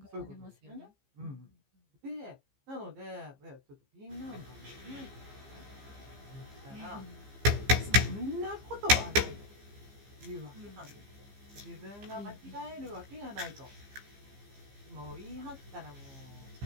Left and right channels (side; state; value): left; late; 15 ms